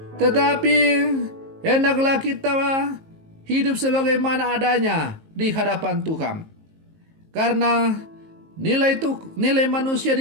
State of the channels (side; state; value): left; late; 19 ms